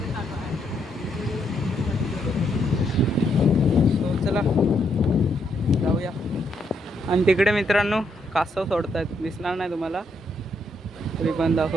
चला जाऊया. आणि तिकडे मित्रांनो कासव सोडतात. दिसणार नाही तुम्हाला तरी पण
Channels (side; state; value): both; normal; correlation 0.76